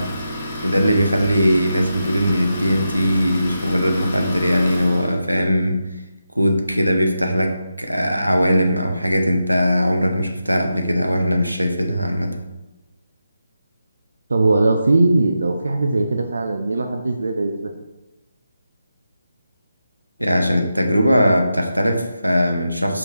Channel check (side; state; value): both; inverted; correlation -0.88